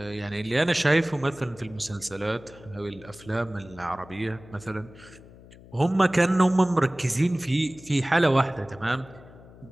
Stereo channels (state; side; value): noise; left; hum, 21 dB below the sound